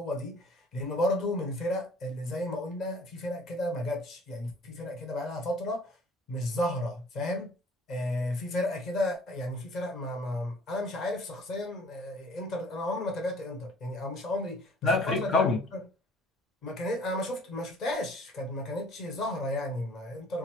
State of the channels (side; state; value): both; normal; correlation 0.54